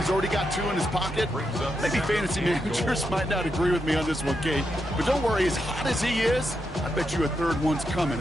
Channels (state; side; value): normal; both; correlation 0.84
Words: already got 2 in his pocket. Maybe fantasy managers might not agree with me on this one, Kate. But don't worry, as hot as he is, I bet you a 3rd one's coming